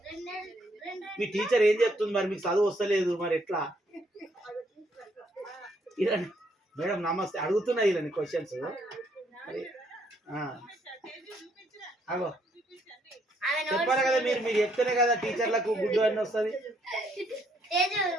మీ టీచర్ ఏం చెప్తుంది? మరి మీకు చదువు వస్తలేదు, మరి ఎట్లా? మేడం నమస్తే, అడుగుతున్నా ఇలా క్వశ్చన్స్. అగో చెప్పాలి కదా మీరు, మీరు చెప్తేనే కదా టీచర్లకు గుడ్డు అని వస్తుంది.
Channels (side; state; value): both; normal; correlation 0.70